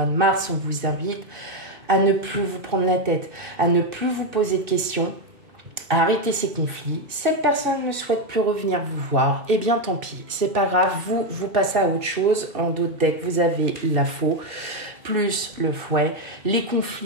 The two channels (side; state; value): left; late; 2.6 ms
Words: de mars, on vous invite à ne plus vous prendre la tête, à ne plus vous poser de questions, à arrêter ces conflits. Cette personne ne souhaite plus revenir vous voir, eh bien tant pis, c'est pas grave, vous passez à autre chose. En d'autres decks, vous avez la faux, plus le fouet. Les